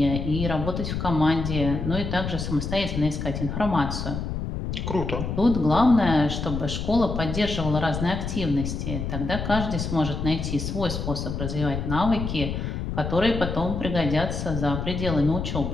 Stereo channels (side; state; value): left; noise; rumble, 4 dB below the sound